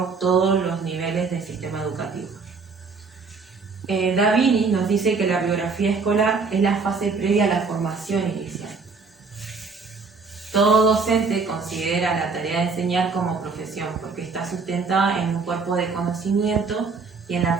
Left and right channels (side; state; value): left; quieter; 4.6 dB